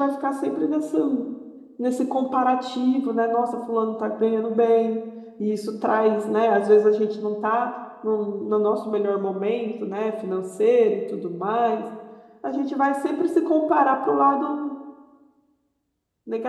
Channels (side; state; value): both; identical; correlation 1.00